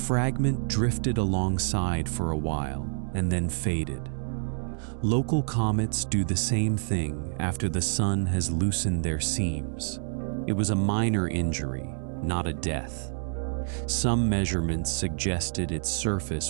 drifted alongside for a while and then faded. Local comets do the same thing after the sun has loosened their seams. It was a minor injury, not a death. Some measurements suggested its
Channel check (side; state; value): left; silent; 60 dB below the other